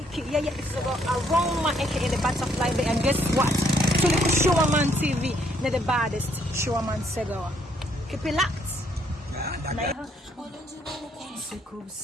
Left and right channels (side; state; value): both; normal; correlation 0.69